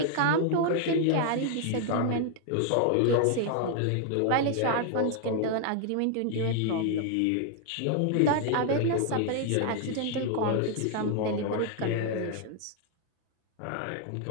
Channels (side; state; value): both; different; correlation 0.00